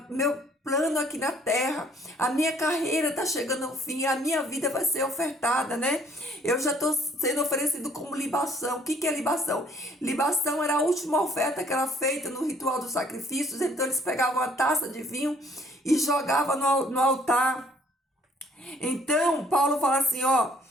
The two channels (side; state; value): both; normal; correlation 0.61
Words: meu plano aqui na terra, a minha carreira está chegando ao fim, a minha vida vai ser ofertada, né? Eu já estou sendo oferecido como libação. O que é libação? Libação era a última oferta que era feita no ritual dos sacrifícios. Então eles pegavam uma taça de vinho e jogavam no altar. Então Paulo fala assim, ó: